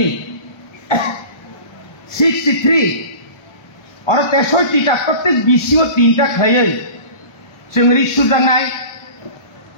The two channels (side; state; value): right; late; 1.2 ms